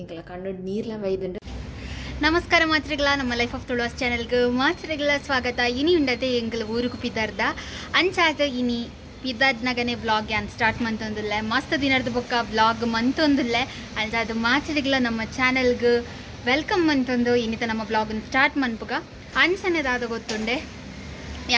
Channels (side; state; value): both; identical; correlation 1.00